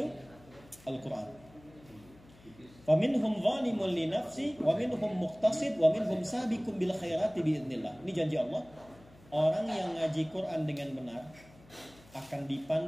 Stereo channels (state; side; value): noise; left; hum, 25 dB below the sound